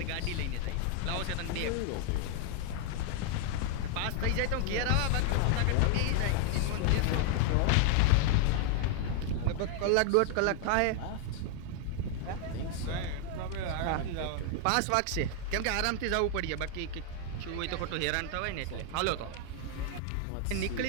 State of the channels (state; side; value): different; both; correlation 0.00